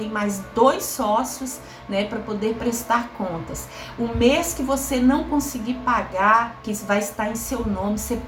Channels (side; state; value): both; identical; correlation 1.00